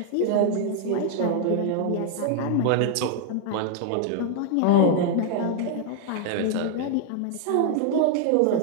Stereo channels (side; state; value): both; different; correlation 0.00